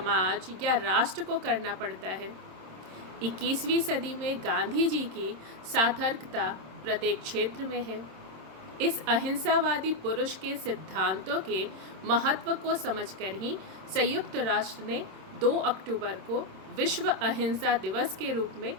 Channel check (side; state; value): left; late; 26 ms